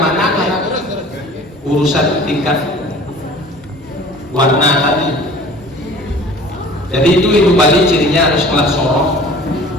kayak urusan tingkat warna tadi jadi itu hidup Bali cirinya harus kelas sorong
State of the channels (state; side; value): normal; both; correlation 0.46